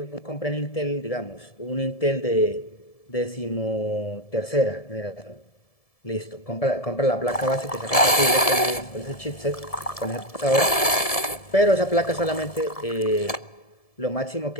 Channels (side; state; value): right; late; 1.7 ms